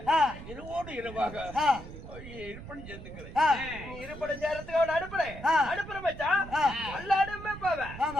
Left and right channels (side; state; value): right; noise; rumble, 13 dB below the sound